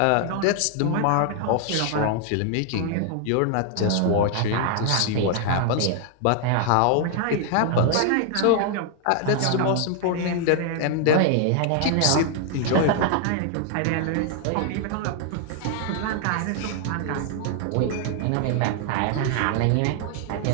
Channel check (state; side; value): different; both; correlation 0.00